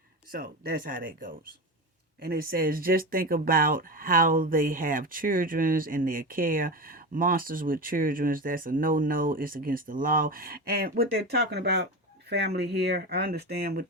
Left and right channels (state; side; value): normal; both; correlation 0.22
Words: So that's how that goes. And it says, just think about how they have children in their care. Monsters with children, that's a no-no. It's against the law. And what they're talking about, family here, I understand what